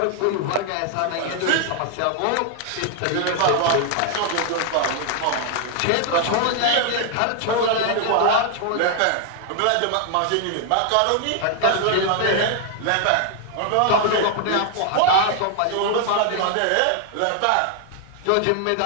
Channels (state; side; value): different; both; correlation 0.00